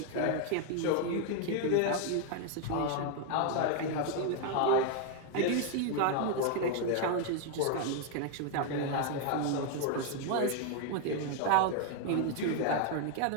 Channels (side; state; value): both; different; correlation 0.00